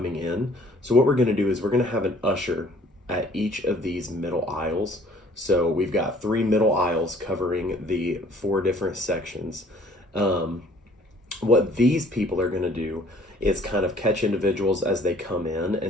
in. So what we're going to do is we're going to have an usher at each of these middle aisles. So we've got 3 middle aisles covering the 4 different sections. What these people are going to do is kind of catch individuals as they come in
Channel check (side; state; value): both; normal; correlation 0.56